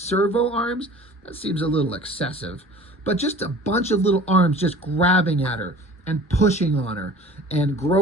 arms. That seems a little excessive, but just a bunch of little arms just grabbing at her and pushing on her and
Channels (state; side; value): normal; both; correlation 0.45